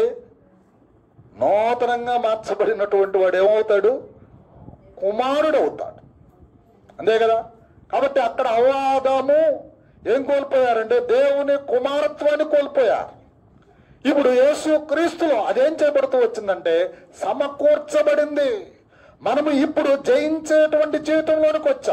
నూతనంగా మార్చబడినటువంటి వాడు ఏమవుతాడు? కుమారుడు అవుతాడు. అంతే కదా. కాబట్టి అక్కడ అవాదము ఏం కోల్పోయారంటే దేవుని కుమారత్వాన్ని కోల్పోయారు. ఇప్పుడు యేసు క్రీస్తులో అదేం చేయబడుతూ వచ్చిందంటే సమకూర్చబడింది. మనము ఇప్పుడు జయించేటువంటి జీవితంలోనికి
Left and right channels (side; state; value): both; identical; correlation 1.00